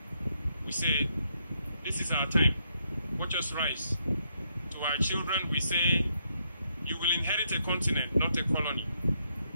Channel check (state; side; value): inverted; both; correlation -0.76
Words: we say, this is our time. Watch us rise. To our children, we say, you will inherit a continent, not a colony.